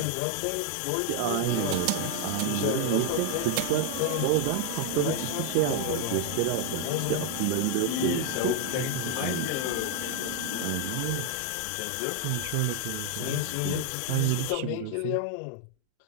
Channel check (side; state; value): both; different; correlation 0.00